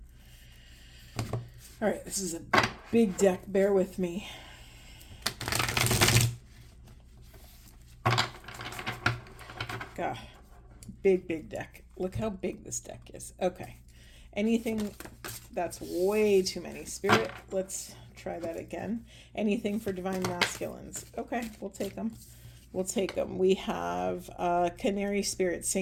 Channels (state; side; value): identical; both; correlation 1.00